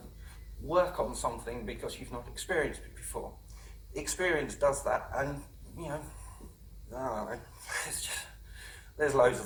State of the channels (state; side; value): identical; both; correlation 1.00